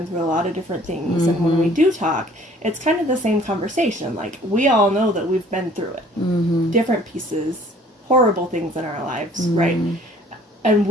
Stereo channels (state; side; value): normal; both; correlation 0.54